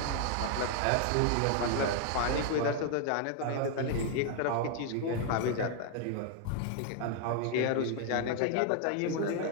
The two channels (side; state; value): both; different; correlation 0.00